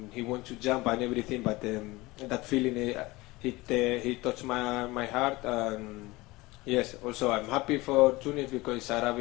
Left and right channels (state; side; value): quieter; right; 21.2 dB